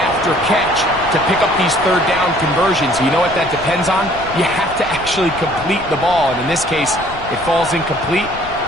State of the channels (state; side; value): noise; left; rumble, 15 dB below the sound